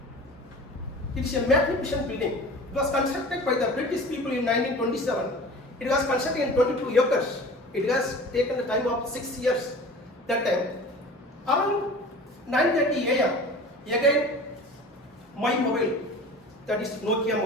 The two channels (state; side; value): normal; both; correlation 0.40